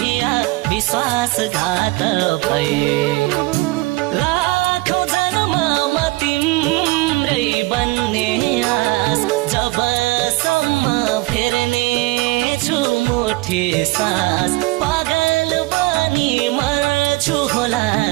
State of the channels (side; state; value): left; quieter; 21.9 dB